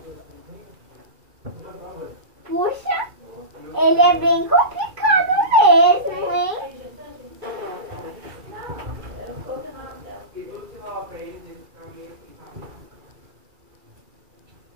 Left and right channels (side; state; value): left; late; 2.3 ms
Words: Puxa, ele é bem complicado mesmo, hein?